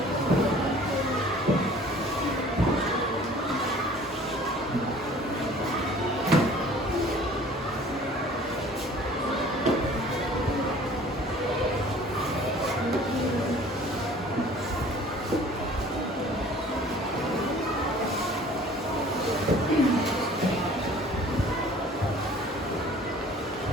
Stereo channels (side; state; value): both; normal; correlation 0.50